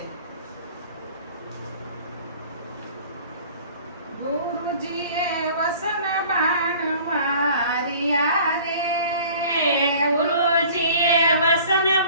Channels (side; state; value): both; inverted; correlation -0.48